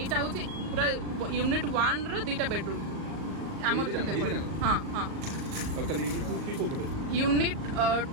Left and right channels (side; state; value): left; late; 38 ms